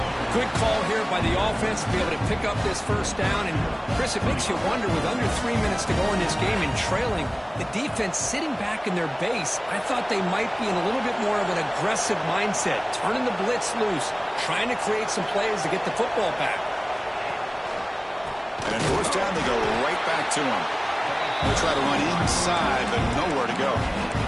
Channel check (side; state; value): both; identical; correlation 1.00